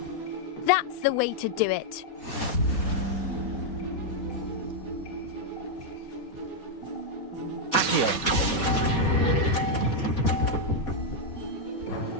That's the way to do it. Accio.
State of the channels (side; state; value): right; late; 4.2 ms